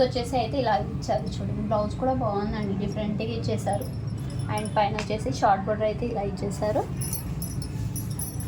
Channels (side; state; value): both; identical; correlation 1.00